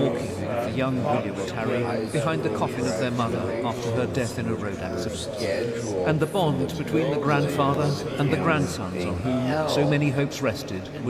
with the young William and Harry behind the coffin of their mother after her death in a road accident. And the bond between the grandfather and the grandsons on whom so many hopes rested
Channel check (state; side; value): identical; both; correlation 1.00